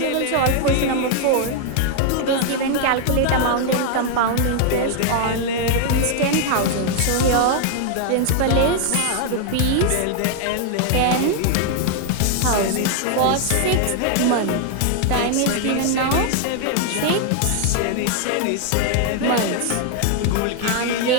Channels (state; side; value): different; both; correlation 0.00